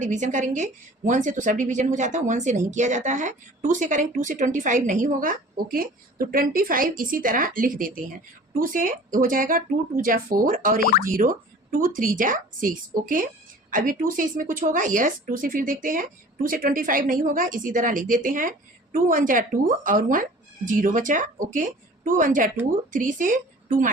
करेंगे। 1 से तो सब डिवीजन हो जाता है, 1 से नहीं किया जाता है। 2 से करेंगे, 2 से 25 नहीं होगा। ओके, तो 25 इसी तरह लिख देते हैं। 2 से हो जाएगा 2 2 जा 4 और एक 0, 2 3 जा 6। ओके, अभी 2 से इसमें कुछ होगा? यस, 2 से फिर देखते हैं। 2 से 25 नहीं होगा, इसी तरह लिख देते हैं। 2 1 जा 2 और 1 0 बचा। ओके, 2 1 जा 2, 3 से 2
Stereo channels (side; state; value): both; normal; correlation 0.45